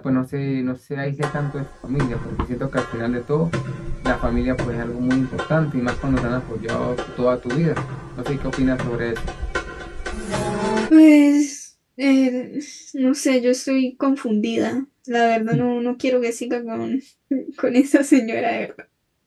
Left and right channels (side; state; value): both; identical; correlation 1.00